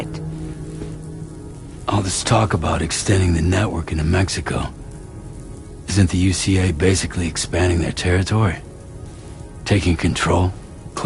All this talk about extending the network into Mexico. Isn't the UCA basically expanding their territory? Taking control?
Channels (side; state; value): both; identical; correlation 1.00